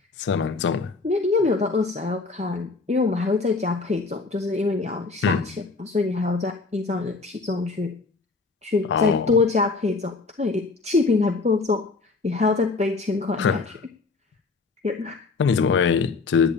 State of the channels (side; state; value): right; quieter; 4.1 dB